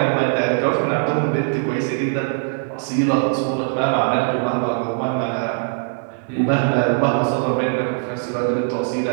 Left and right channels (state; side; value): silent; left; 65 dB below the other